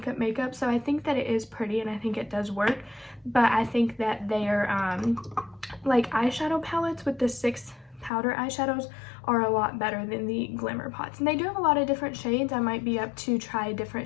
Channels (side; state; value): right; drops out; at 8.1 s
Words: so I think that it is pretty and I think it does work. But I think that their like eyeshadow palettes with the 6 powder eyeshadows are a lot better than the Glimmer Pots, and they do have a lot of different shades. I might be up to try a